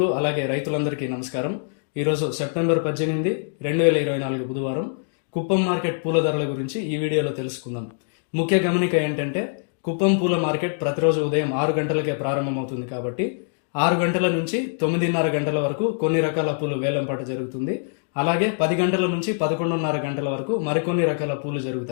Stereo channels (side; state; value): right; silent; digital silence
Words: అలాగే రైతులందరికీ నమస్కారం. ఈరోజు సెప్టెంబర్ 18, 2024 బుధవారం. కుప్పం మార్కెట్ పూల ధరల గురించి ఈ వీడియోలో తెలుసుకుందాం. ముఖ్య గమనిక ఏంటంటే, కుప్పం పూల మార్కెట్ ప్రతిరోజు ఉదయం 6 గంటలకే ప్రారంభమవుతుంది కాబట్టి 6 గంటల నుంచి 9:30 గంటల వరకు కొన్ని రకాల పూలు వేలంపాట జరుగుతుంది. అలాగే 10 గంటల నుంచి 11:30 గంటల వరకు మరికొన్ని రకాల పూలు